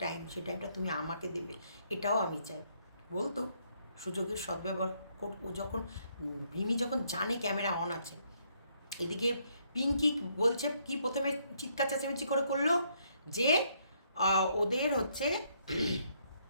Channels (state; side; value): inverted; both; correlation -0.71